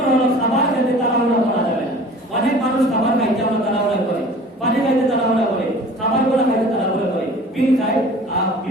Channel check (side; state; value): both; normal; correlation 0.45